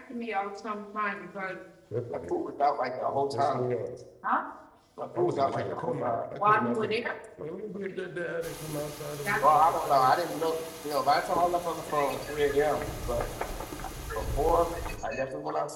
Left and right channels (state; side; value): identical; both; correlation 1.00